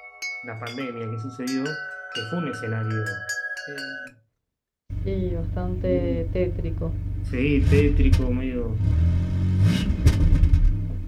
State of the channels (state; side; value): identical; both; correlation 1.00